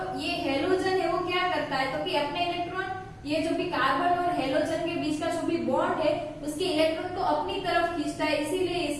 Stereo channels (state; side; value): identical; both; correlation 1.00